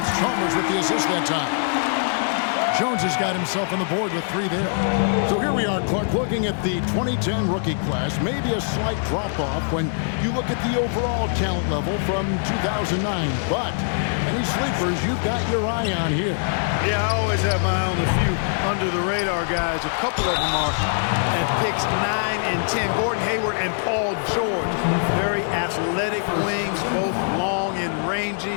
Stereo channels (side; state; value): right; silent; digital silence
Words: it's Chalmers with the assist that time. Jones has got himself on the board with three there. So here we are, Clark, looking at the 2010 rookie class. Maybe a slight drop-off when you look at the overall talent level from 2009. But any sleepers you've got your eye on here? Yeah, I always have my eye on a few under-the-radar guys. A couple of them are at picks 9 and 10. Gordon Hayward and Paul George. Very athletic wings, both long and